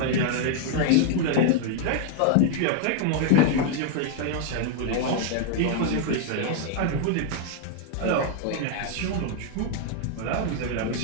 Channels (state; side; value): different; both; correlation 0.00